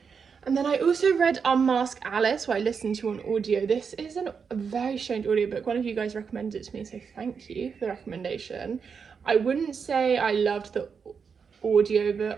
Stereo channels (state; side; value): quieter; left; 6.1 dB